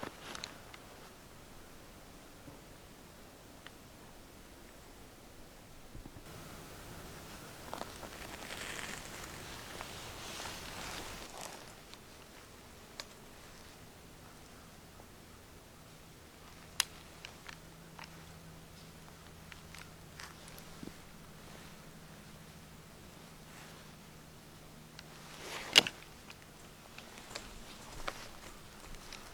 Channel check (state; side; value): identical; both; correlation 1.00